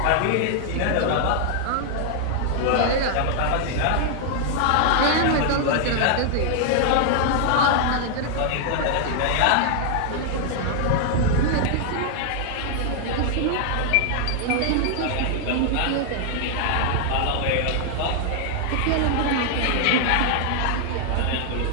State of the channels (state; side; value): different; both; correlation 0.00